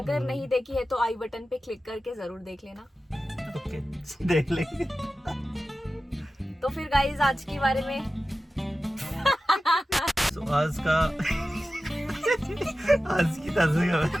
अगर नहीं देखी है तो आई बटन पे क्लिक करके जरूर देख लेना। ओके, देख लेंगे। तो फिर गाइस आज के बारे में So, आज की ताज़ा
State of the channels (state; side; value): normal; both; correlation 0.94